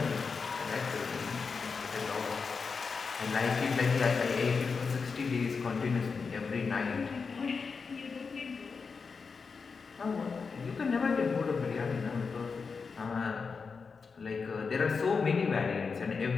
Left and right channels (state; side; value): quieter; right; 5.1 dB